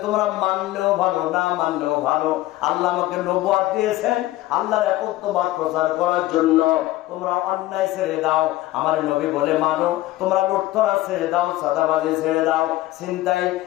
তোমরা মানলেও ভালো, না মানলেও ভালো, আল্লাহ আমাকে নবুয়ত দিয়েছেন আল্লাহর একত্ববাদ প্রচার করার জন্য। তোমরা অন্যায় ছেড়ে দাও, আমার নবী বলে মানো। তোমরা লুটতরাজ ছেড়ে দাও, চাঁদাবাজি ছেড়ে দাও, ছিনতাই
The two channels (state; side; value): quieter; right; 16.5 dB